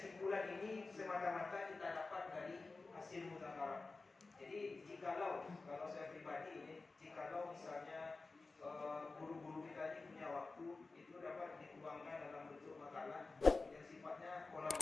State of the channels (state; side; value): quieter; right; 3.7 dB